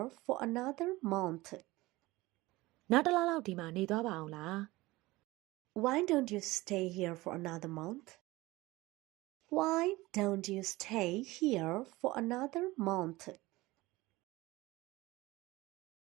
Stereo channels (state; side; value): quieter; left; 20.0 dB